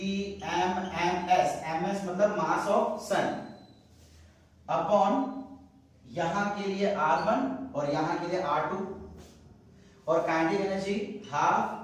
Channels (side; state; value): both; identical; correlation 1.00